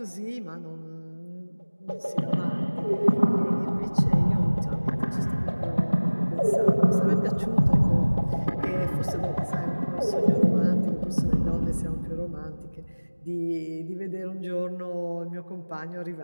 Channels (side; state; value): both; inverted; correlation -1.00